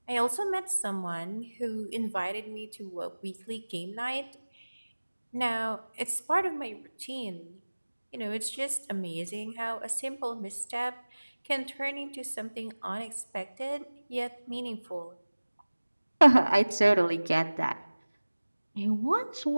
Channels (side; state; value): both; inverted; correlation -1.00